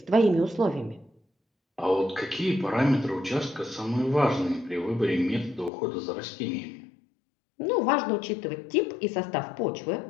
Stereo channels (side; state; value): right; drops out; at 5.7 s